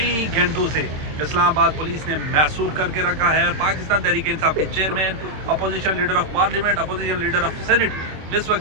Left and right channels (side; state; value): left; late; 26 ms